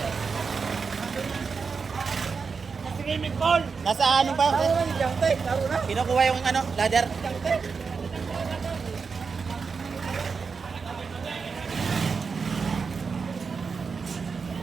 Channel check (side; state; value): left; quieter; 5.2 dB